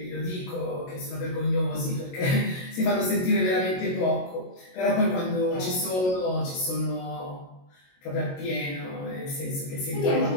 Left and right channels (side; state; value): right; late; 22 ms